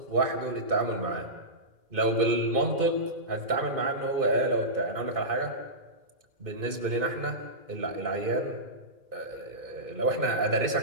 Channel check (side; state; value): left; late; 2.5 ms